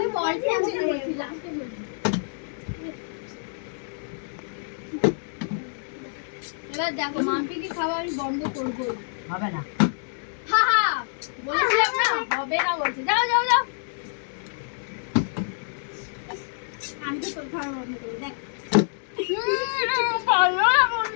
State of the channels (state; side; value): silent; right; digital silence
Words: বলছি লাস্টে বলছি এবার দেখো মাম্পি কি খাওয়া আমি বন্ধ করবো হবে না হা হা বলেছিলাম না হবে না বলছে যাও যাও যাও আমি তো তোর খাওয়া বন্ধ করবো দেখ ভালো না